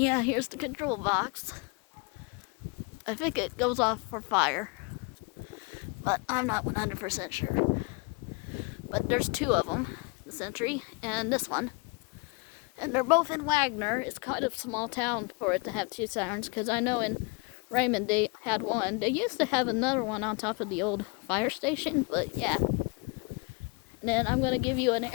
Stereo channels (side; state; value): right; quieter; 30.8 dB